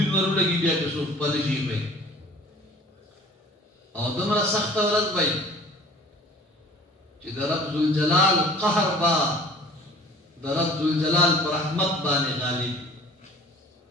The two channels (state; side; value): normal; both; correlation 0.48